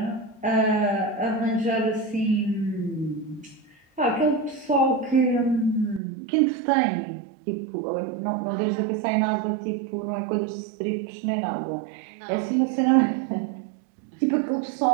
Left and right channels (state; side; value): drops out; left; at 6.0 s